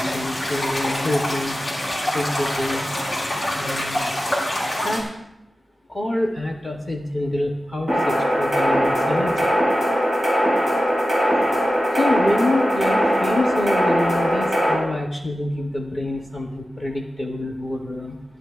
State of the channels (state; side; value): normal; both; correlation 0.93